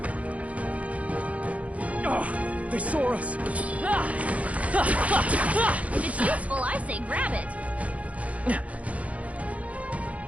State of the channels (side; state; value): left; late; 0.067 ms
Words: Oh, they saw us. If it's useful, I say grab it.